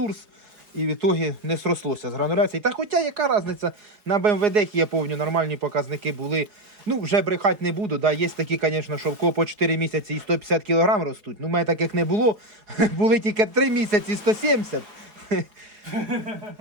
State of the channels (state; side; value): late; left; 4.8 ms